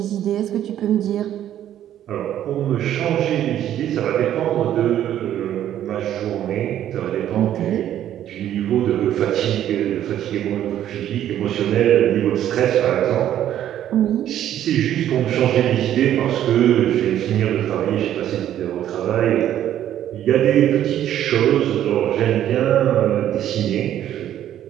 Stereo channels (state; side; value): quieter; left; 11.4 dB